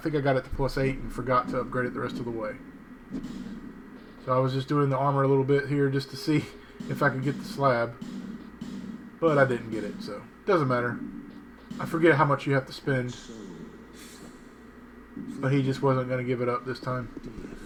I got it to +8 and forgot to upgrade it the rest of the way. So I was just doing the armor a little bit here just to see if I could get the slab. But I didn't get it, so it doesn't matter. I forget how much you have to spend. But he just wasn't going to give it up this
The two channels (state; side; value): identical; both; correlation 1.00